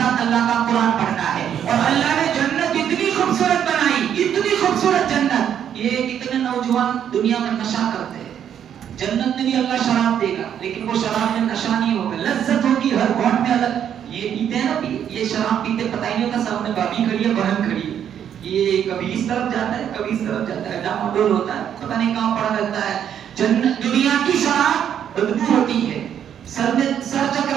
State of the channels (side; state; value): left; quieter; 9.2 dB